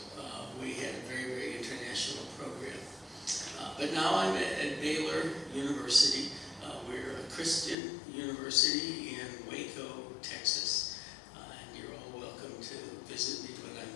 We had a very, very international program. But now I'm at Baylor University. We're a Christian university in Waco, Texas. And you're all welcome to visit me when I'm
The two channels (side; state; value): right; drops out; at 7.8 s